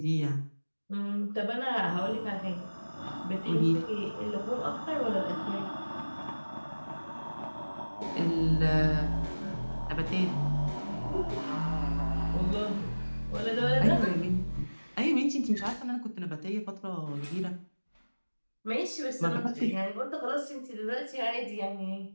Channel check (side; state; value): both; inverted; correlation -1.00